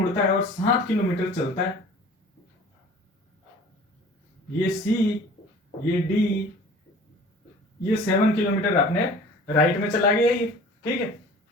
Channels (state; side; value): normal; both; correlation 0.45